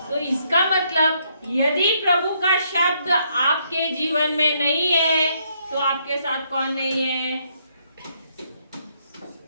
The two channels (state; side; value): inverted; both; correlation -0.72